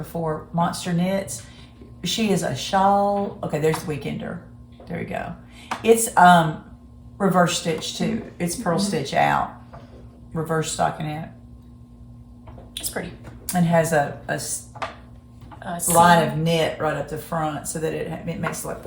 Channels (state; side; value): identical; both; correlation 1.00